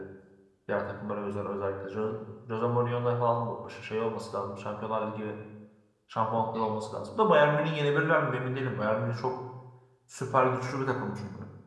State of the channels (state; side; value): identical; both; correlation 1.00